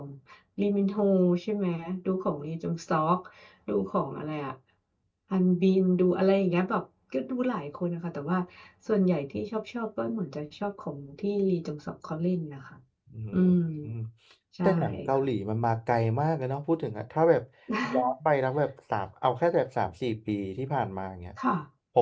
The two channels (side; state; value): both; identical; correlation 1.00